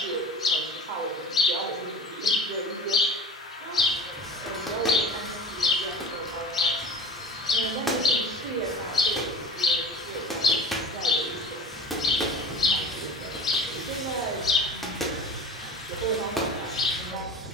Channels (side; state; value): both; normal; correlation 0.36